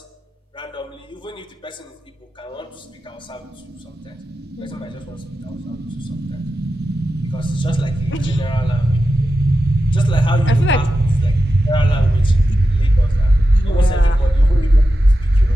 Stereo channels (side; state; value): both; normal; correlation 0.91